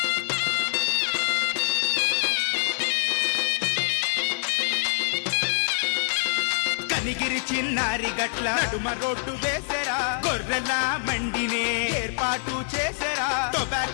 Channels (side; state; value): right; silent; 61 dB below the other